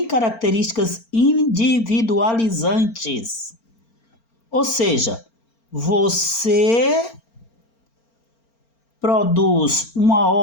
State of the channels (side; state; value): right; late; 4.4 ms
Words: características individualizantes. Ou seja, você produz uma